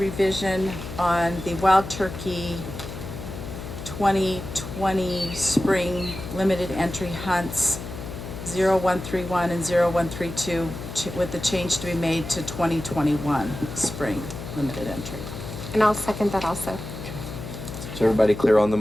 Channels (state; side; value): noise; left; hum, 9 dB below the sound